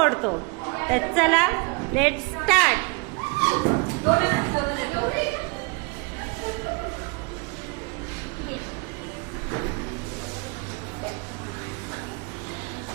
तर चला लेट स्टार्ट.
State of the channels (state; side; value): quieter; left; 30.3 dB